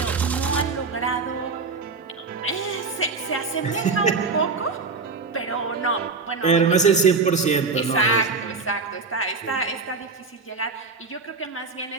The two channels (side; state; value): left; quieter; 4.3 dB